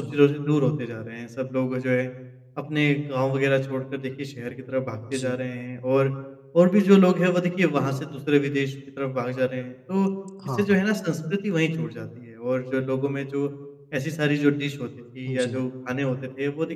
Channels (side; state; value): both; identical; correlation 1.00